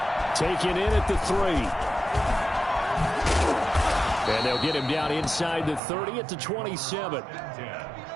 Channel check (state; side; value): drops out; left; at 5.8 s